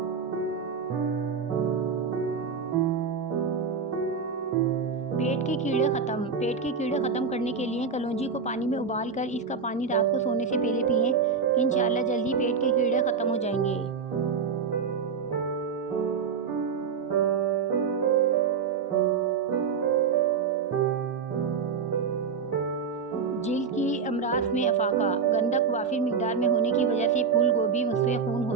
पेट के कीड़े ख़त्म करने के लिए कलौंजी को पानी में उबाल कर इसका पानी रात को सोने से पहले पिएं। इंशाअल्लाह जल्दी पेट के कीड़े ख़त्म हो जाएंगे। जिल्द की अमराज में अफाका। गंधक वाफिर मिकदार में होने की वजह से फूल गोभी मुस्फ़े खून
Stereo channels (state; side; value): quieter; left; 5.7 dB